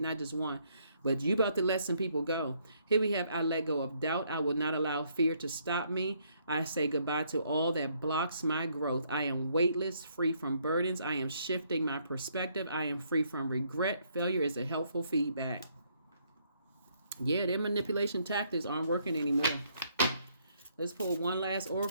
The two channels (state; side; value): inverted; both; correlation -0.70